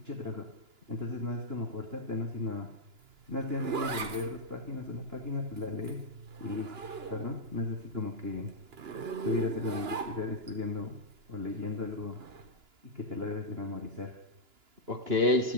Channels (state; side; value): late; left; 2.9 ms